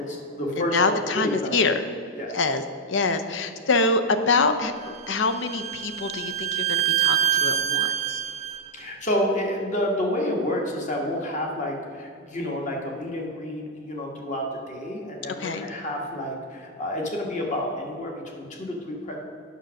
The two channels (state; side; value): normal; both; correlation -0.03